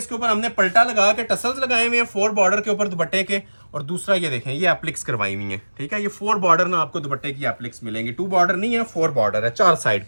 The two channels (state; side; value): inverted; both; correlation -1.00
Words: ऊपर हमने पलटा लगा के टसल्स लगाए हुए हैं 4 बॉर्डर के ऊपर दुपट्टे के, और दूसरा ये देखें ये एप्लिक्स करवाई हुई है। ठीक है, ये 4 बॉर्डर ना आपको दुपट्टे की एप्लिक्स मिलेंगी। 2 बॉर्डर नहीं है, 4 बॉर्डर है 4 साइड